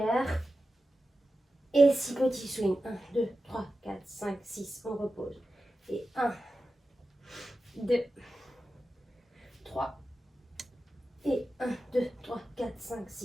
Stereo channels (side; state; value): both; normal; correlation 0.93